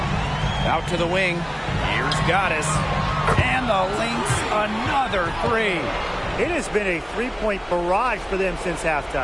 Out to the wing. Here's Goddess. And the Lynx, another 3. It has been a three-point barrage for them since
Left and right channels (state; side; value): identical; both; correlation 1.00